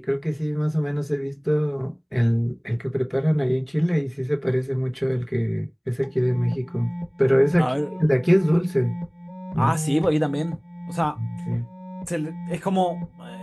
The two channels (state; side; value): identical; both; correlation 1.00